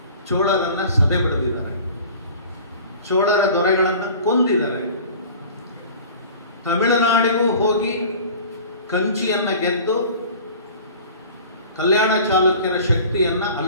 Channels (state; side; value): inverted; both; correlation -0.43